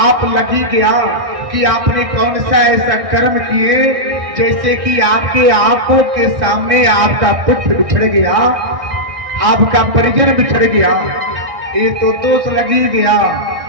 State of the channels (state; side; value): late; left; 1.6 ms